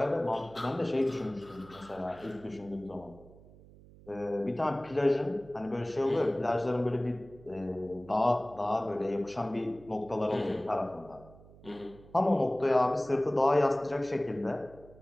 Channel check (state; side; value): noise; right; hum, 22 dB below the sound